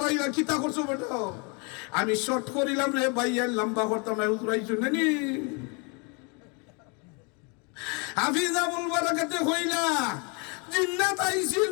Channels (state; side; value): quieter; right; 33.2 dB